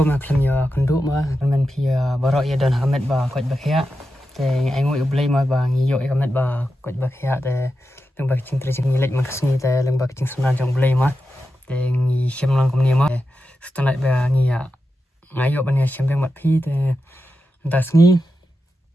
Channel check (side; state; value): both; normal; correlation 0.90